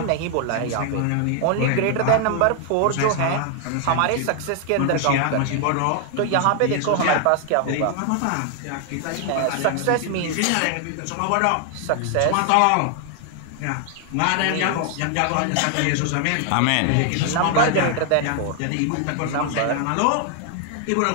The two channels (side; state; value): both; different; correlation 0.00